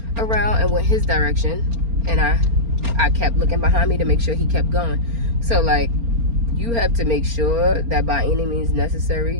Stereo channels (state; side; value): late; left; 4.4 ms